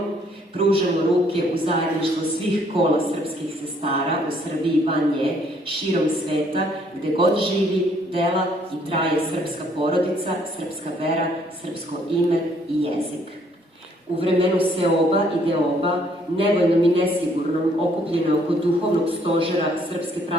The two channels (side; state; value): both; normal; correlation 0.65